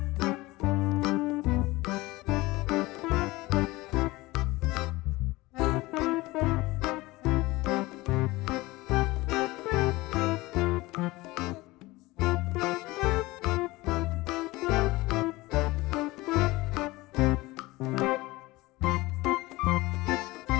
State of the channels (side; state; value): right; quieter; 20.5 dB